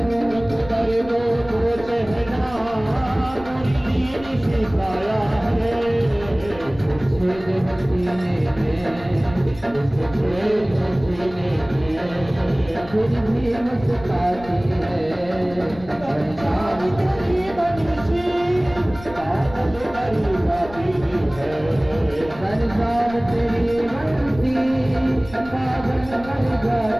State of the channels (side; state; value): left; noise; rumble, 17 dB below the sound